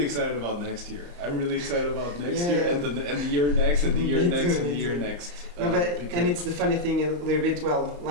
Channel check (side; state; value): left; late; 34 ms